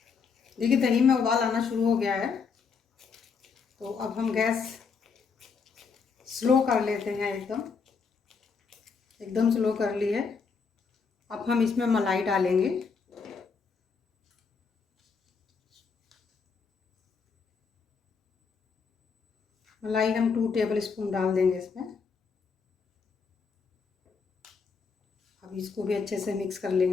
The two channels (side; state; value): right; quieter; 5.4 dB